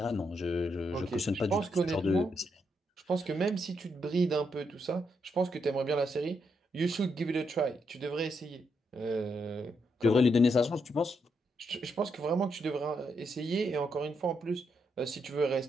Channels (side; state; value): both; normal; correlation 0.80